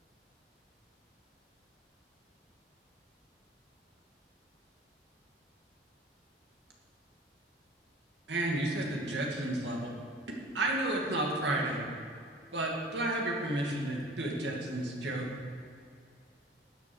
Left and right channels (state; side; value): normal; both; correlation 0.45